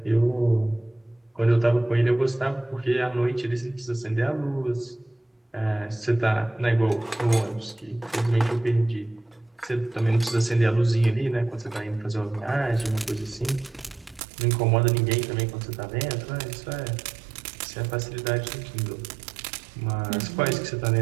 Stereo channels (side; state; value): left; drops out; at 14.2 s